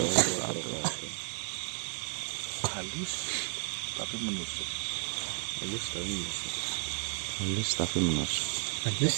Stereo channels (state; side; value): silent; left; 56 dB below the other